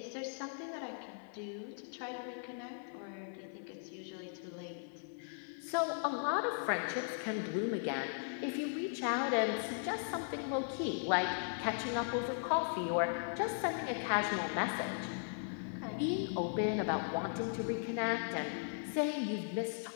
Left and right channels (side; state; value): right; silent; 52 dB below the other